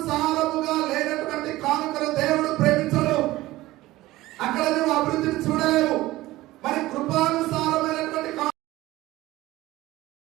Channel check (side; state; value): left; quieter; 17.6 dB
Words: లేనటువంటి కానుకను దేవుడు ప్రేమించడు. అక్కడ నువ్వు అభివృద్ధిని చూడలేవు. మరి కృపానుసారమైనటువంటి